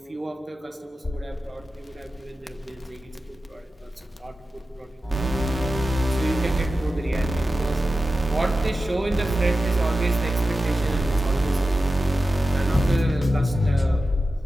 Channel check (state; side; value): normal; both; correlation 0.93